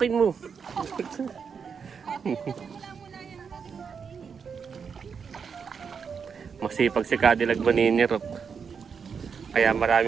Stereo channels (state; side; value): quieter; left; 6.3 dB